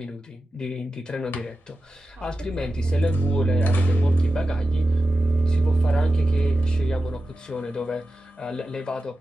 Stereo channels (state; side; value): normal; both; correlation 0.92